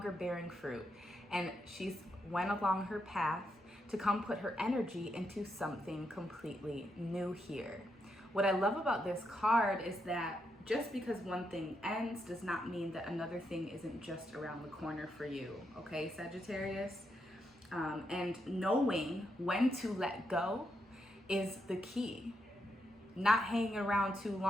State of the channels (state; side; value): normal; both; correlation 0.81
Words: bearing fruit. And she's went along her path to come put her energy into something completely new here. What I love about this card is that just because one thing ends does not mean that another thing isn't just around the corner for you. Okay, Sagittarius? And knowing when to let go is the key. Not hanging around too